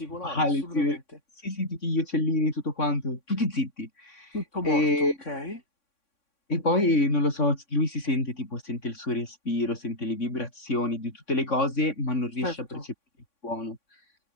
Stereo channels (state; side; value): late; right; 3.6 ms